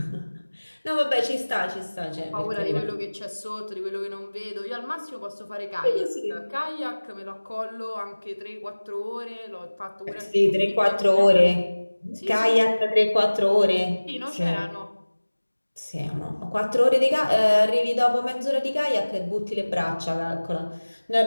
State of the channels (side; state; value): both; inverted; correlation -1.00